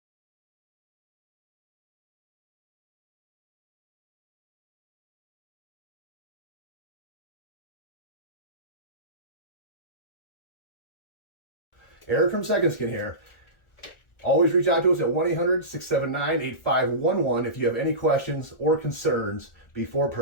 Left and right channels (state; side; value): late; right; 1.4 ms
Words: Eric from Second Skin here. Always reach out to us at 1-800-679-8511 if you have any questions or concerns before